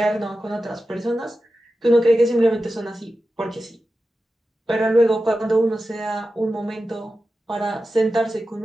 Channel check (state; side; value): normal; both; correlation 0.92